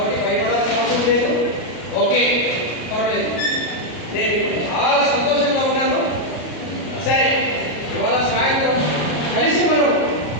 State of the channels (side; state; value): right; late; 33 ms